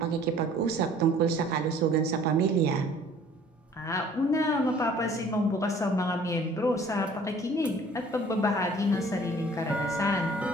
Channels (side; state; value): both; normal; correlation 0.53